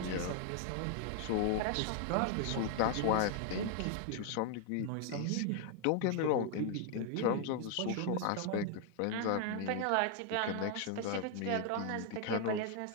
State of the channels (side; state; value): both; different; correlation 0.00